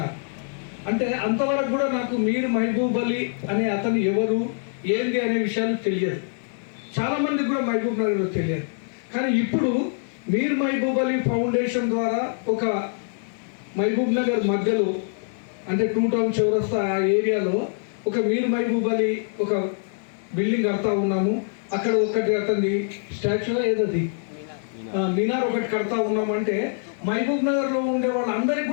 అంటే అంతవరకు కూడా నాకు మీర్ మహబూబ్ అలీ అనే అతను ఎవరు ఏంది అనే విషయాలు తెలియదు, చాలా మందికి కూడా మహబూబ్ నగర్లో తెలియదు. కానీ ఇప్పుడు మీర్ మహబూబ్ అలీ ఫౌండేషన్ ద్వారా ఒక మహబూబ్ నగర్ మధ్యలో అంటే 2 టౌన్ చౌరస్తా ఆ ఏరియాలో ఒక మీర్ మహబూబ్ అలీ ఒక బిల్డింగ్ కడతా ఉన్నాము. అక్కడ ఒకటి అతని స్టాచ్యూ ఏదది మినార్ ఒకటి కడతా ఉన్నాము. అంటే మహబూబ్ నగర్లో ఉండే వాళ్ళందరికీ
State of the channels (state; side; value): silent; right; digital silence